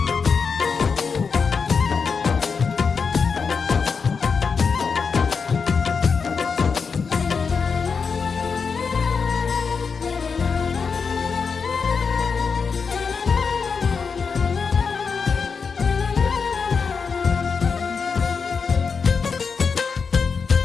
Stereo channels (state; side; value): quieter; right; 5.5 dB